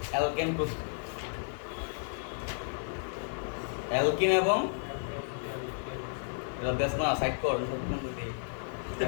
অ্যালকেন প্রস্তুতি অ্যালকিন এবং এটা দেশ না সাইড কর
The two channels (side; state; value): right; silent; 56 dB below the other